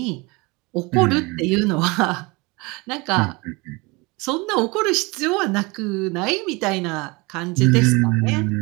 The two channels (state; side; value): quieter; left; 25.8 dB